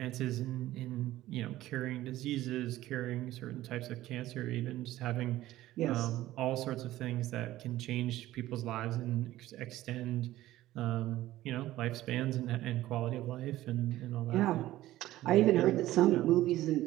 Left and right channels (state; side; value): quieter; left; 15.3 dB